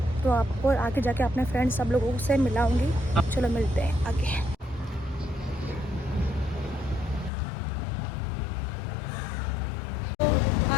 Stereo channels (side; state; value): right; drops out; at 7.3 s